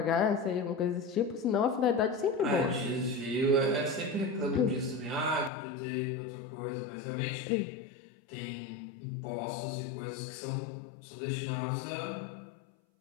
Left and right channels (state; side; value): drops out; right; at 5.5 s